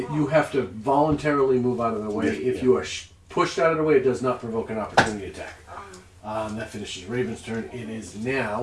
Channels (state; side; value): identical; both; correlation 1.00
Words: have to voluntarily move out of the way. Yeah. If you are pushed out of the way, it does not provoke an opportunity attack. That finishes Raven's turn. It is